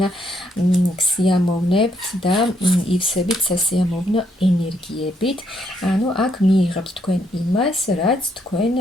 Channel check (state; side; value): normal; both; correlation 0.73